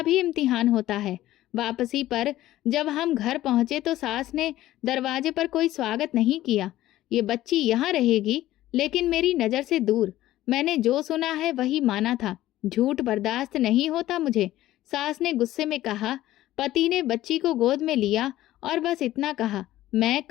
भी इम्तिहान होता है। वापसी पर जब हम घर पहुंचे तो सास ने दरवाजे पर कोई स्वागत नहीं किया। ये बच्ची यहाँ रहेगी, लेकिन मेरी नज़र से दूर। मैंने जो सुना है वही माना था। झूठ बर्दाश्त नहीं होता मुझे। सास ने गुस्से में कहा। पति ने बच्ची को गोद में लिया और बस इतना कहा, मैं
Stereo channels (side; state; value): right; quieter; 14.8 dB